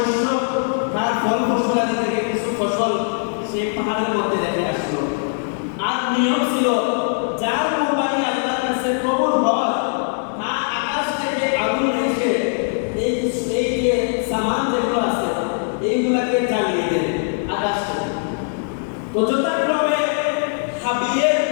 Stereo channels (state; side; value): silent; right; digital silence